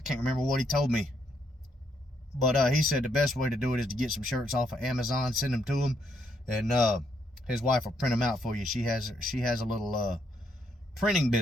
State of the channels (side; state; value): both; normal; correlation 0.74